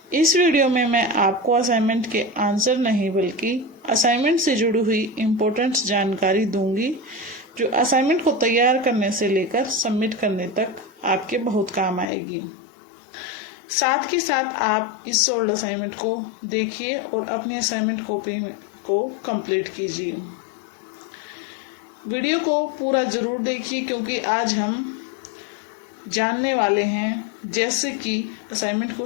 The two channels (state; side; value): drops out; right; at 12.1 s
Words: इस वीडियो में मैं आपको असाइनमेंट के आंसर नहीं बल्कि असाइनमेंट से जुड़ी हुई इम्पोर्टेंट जानकारी दूंगी जो असाइनमेंट को तैयार करने से लेकर सबमिट करने तक आपके बहुत काम आएगी। साथ के साथ आप इस सोल्ड असाइनमेंट को देखिए और अपनी असाइनमेंट कॉपी को कंप्लीट कीजिए। वीडियो को पूरा ज़रूर देखिए क्योंकि आज हम जानने वाले हैं जैसे कि असाइनमेंट